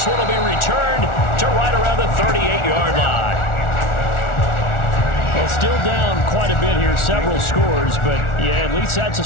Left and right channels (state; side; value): late; right; 1.4 ms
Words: one will be returned to right around the 38-yard line. Well, still down quite a bit here, several scores, but yeah, at least that's a